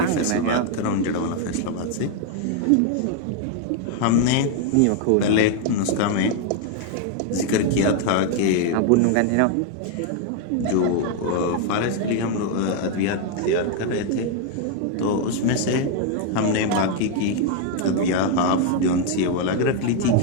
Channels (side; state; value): both; different; correlation 0.00